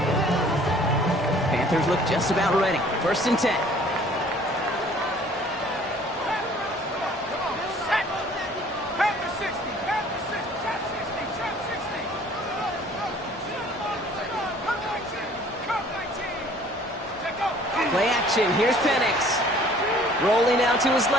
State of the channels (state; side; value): normal; both; correlation 0.54